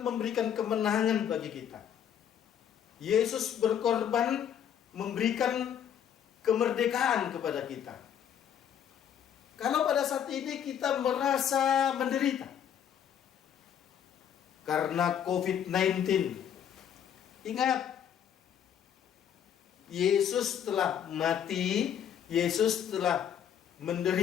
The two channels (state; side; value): quieter; right; 9.1 dB